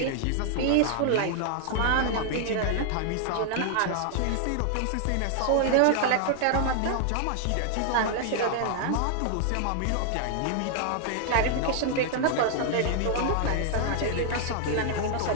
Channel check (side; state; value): both; different; correlation 0.00